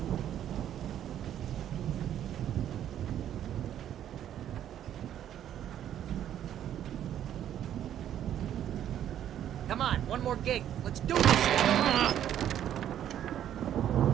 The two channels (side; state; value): left; quieter; 10.7 dB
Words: Come on, one more gate. Let's do this.